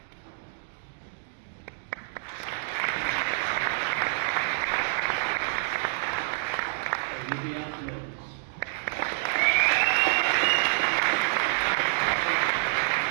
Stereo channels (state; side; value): silent; left; digital silence